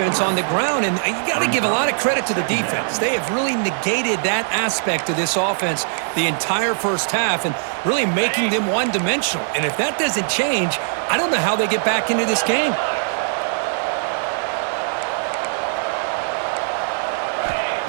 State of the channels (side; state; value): left; silent; digital silence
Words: on the ground, and you got to give a lot of credit to the defense. They have really negated that aspect of this offense the entire first half and really making them one-dimensional. And if that doesn't change, I don't know how they get back into this game.